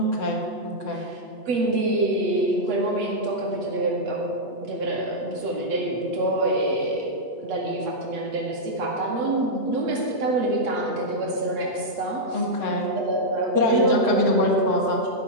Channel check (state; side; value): late; left; 8.4 ms